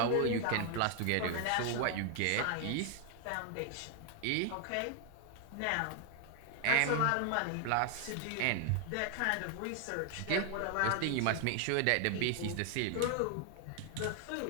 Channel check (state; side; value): different; both; correlation 0.00